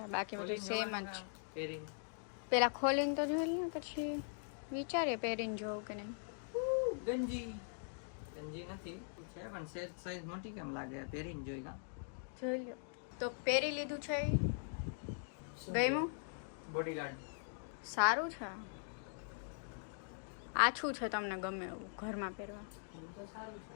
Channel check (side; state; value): right; silent; digital silence